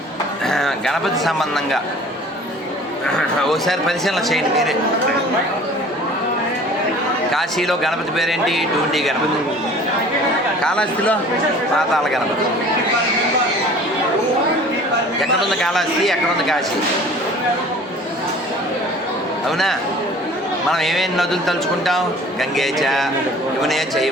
గణపతి సంబంధంగా ఓసారి పరిశీలన చేయండి మీరే. కాశీలో గణపతి పేరేంటి? డూండి గణపతి. కాళహస్తిలో పాతాళ గణపతి. ఎక్కడుంది కాళహస్తి, ఎక్కడుంది కాశీ? అవునా? మనం ఏమేమి నదులు తలుచుకుంటాం? గంగేచ యమునే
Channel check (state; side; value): normal; both; correlation 0.47